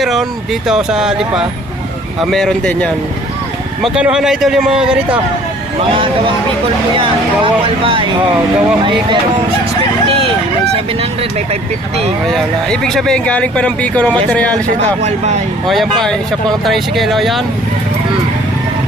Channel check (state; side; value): normal; both; correlation 0.54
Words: dito sa Lipa. Meron din yan. Magkanuhan na idol yung mga ganito? Mga gawang Bicol po yan, gawang Albay. Gawang May Bicol. merong 650, may 700, may 550. Ayan na. Ibig sabihin galing pa ng Bicol ng materialis ito. Gawang Albay. Yan pa, isa pang tricycle. Yan.